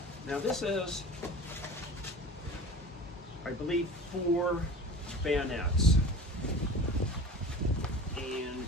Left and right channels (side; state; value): both; normal; correlation 0.36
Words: Now this is, I believe, 4 bayonets, and